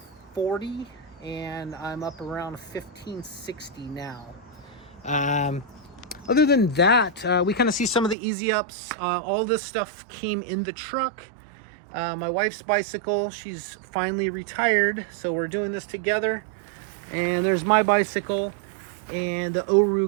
and I'm up around 1,560 now. Other than that, we kind of see some of the easy ups. All this stuff came in the truck. My wife's bicycle, she's finally retired, so we're doing this together. And there's my bicycle and the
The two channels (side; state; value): left; drops out; at 8.2 s